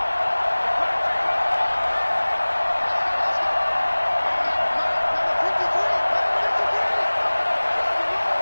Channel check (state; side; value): inverted; both; correlation -1.00